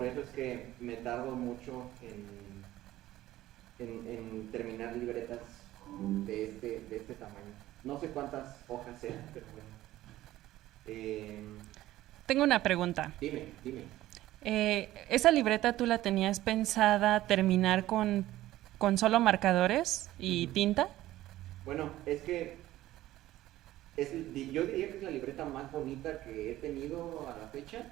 eso es que me tardo mucho en terminar libretas de este tamaño. No sé cuántas hojas sean, pero bueno. Tengo una pregunta. Dime. ¿Esa libreta tú la tenías pensada terminar con solo marcadores y tinta? Bueno, es que yo diría que es la libreta más bonita que he tenido a la fecha,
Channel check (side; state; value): left; quieter; 15.2 dB